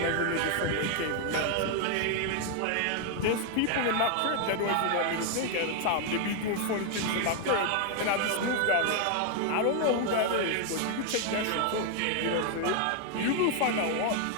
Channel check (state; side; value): different; both; correlation 0.00